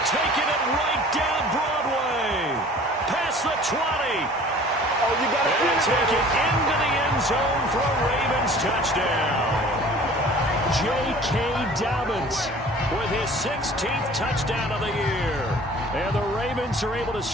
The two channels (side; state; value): both; normal; correlation 0.47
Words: Taking it right down Broadway. Past the 20. And take it into the end zone for a Ravens touchdown. J.K. Dobbins with his 16th touchdown of the year. And the Ravens are able to